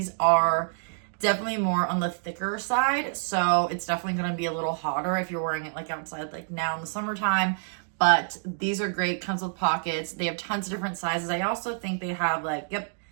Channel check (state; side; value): silent; left; digital silence